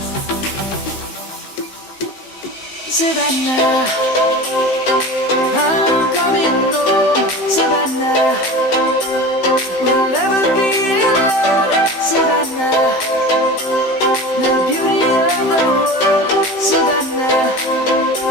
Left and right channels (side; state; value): right; late; 15 ms